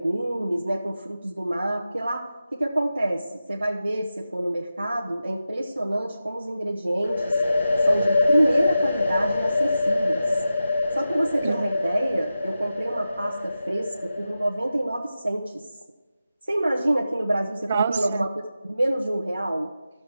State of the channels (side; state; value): both; inverted; correlation -0.92